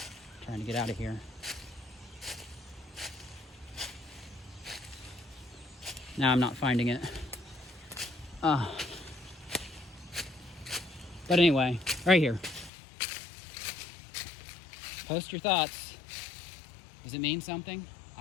Trying to get out of here. Now I'm not finding it. But anyway, right here. Post your thoughts. Does it mean something?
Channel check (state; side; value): drops out; right; at 12.7 s